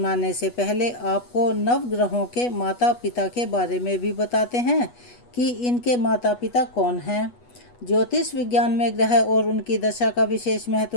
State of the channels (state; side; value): late; right; 8.2 ms